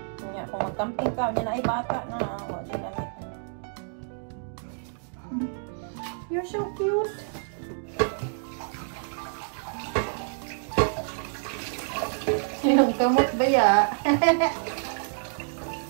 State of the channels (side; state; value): left; silent; digital silence